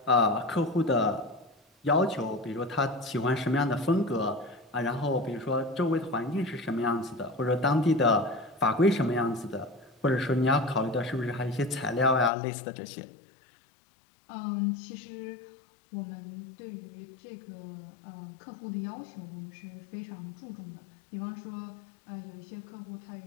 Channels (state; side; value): drops out; right; at 12.3 s